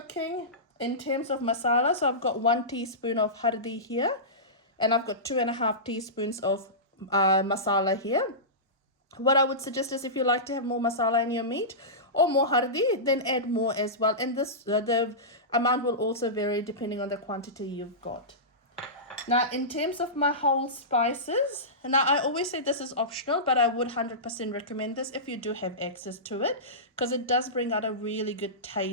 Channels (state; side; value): normal; both; correlation -0.19